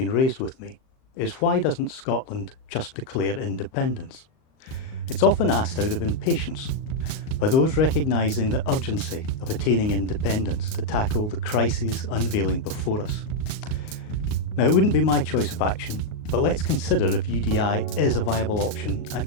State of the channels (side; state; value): right; late; 38 ms